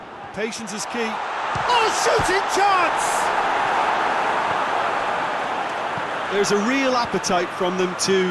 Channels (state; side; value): identical; both; correlation 1.00